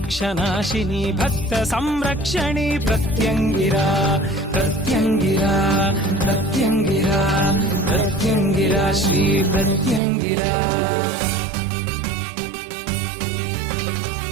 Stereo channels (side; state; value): left; drops out; at 10.0 s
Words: భక్త సంరక్షణి ప్రత్యంగిరా ప్రత్యంగిరా ప్రత్యంగిరా ప్రత్యంగిరా శ్రీ ప్రత్యంగిరా.